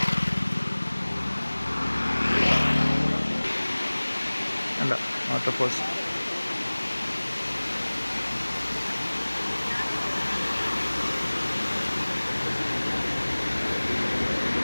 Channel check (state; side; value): inverted; both; correlation -1.00